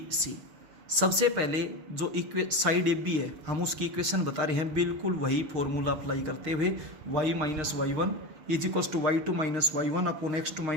सबसे पहले जो साइड AB है हम उसकी इक्वेशन बता रहे हैं, बिल्कुल वही फॉर्मूला अप्लाई करते हुए y-y1 is equals to y2 minus y1 upon x2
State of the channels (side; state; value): left; late; 6.4 ms